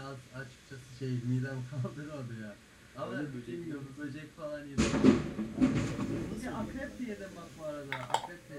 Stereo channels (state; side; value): identical; both; correlation 1.00